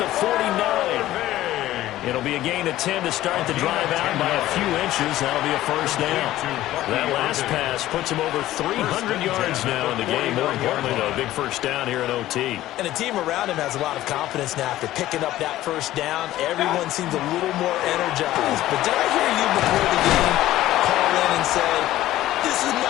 the 49. It'll be a gain of 10 to start the drive out by a few inches. That'll be a first down. That last pass puts him over 300 yards now in the game. More importantly, though, a big first down here in OT. And the team around him has a lot of confidence now after picking up that first down. Everyone seems a little more energized. But did I hear you before the game call in and say, this is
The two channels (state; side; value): quieter; right; 14.8 dB